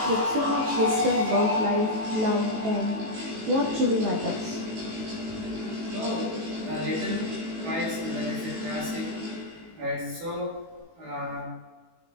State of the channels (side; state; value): left; late; 18 ms